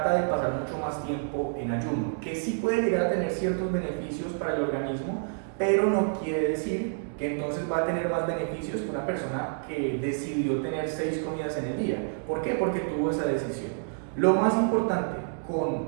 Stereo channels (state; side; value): silent; left; digital silence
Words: de pasar mucho más tiempo en ayuno, que sí puede llegar a tener ciertos beneficios para el organismo, pero no quiere decir que entonces va a tener más beneficios que una persona que decidió tener 6 comidas en el día. ¿Por qué? Porque tuvo esa decisión. Lo más importante